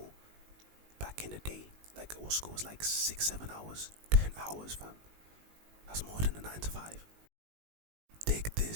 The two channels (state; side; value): late; left; 19 ms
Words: Back in the day, like our school was like 6-7 hours. 10 hours, fam. That's more than a 9 to 5. Dig